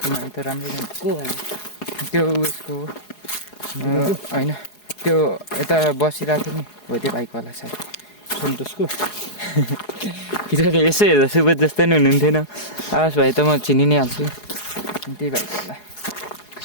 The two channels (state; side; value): late; right; 4.8 ms